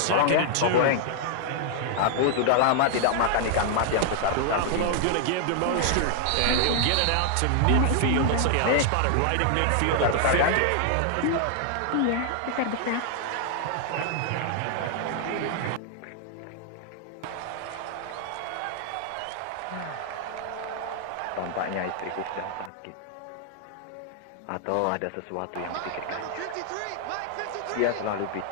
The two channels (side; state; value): both; different; correlation 0.00